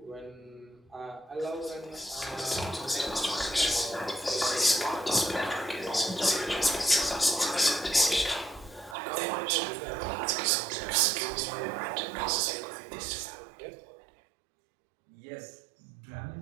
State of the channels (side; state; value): left; drops out; at 9.0 s